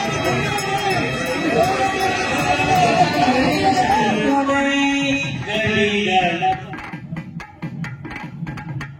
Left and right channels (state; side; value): identical; both; correlation 1.00